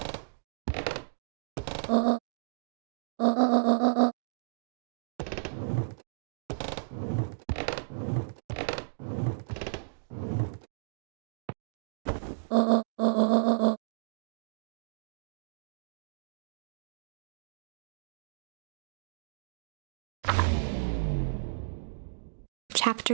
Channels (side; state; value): left; silent; digital silence